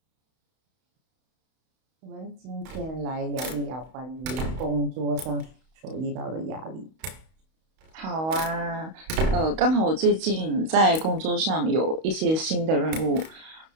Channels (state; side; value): late; left; 31 ms